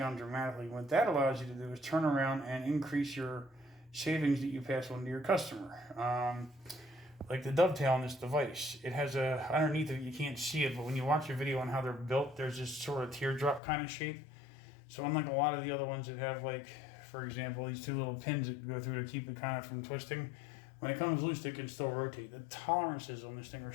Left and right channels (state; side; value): drops out; right; at 13.6 s